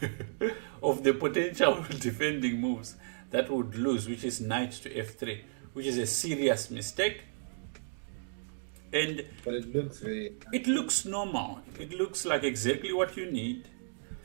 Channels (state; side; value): silent; left; digital silence